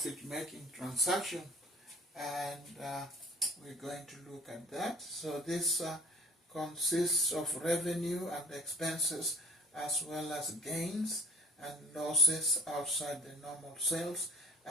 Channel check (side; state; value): both; normal; correlation 0.51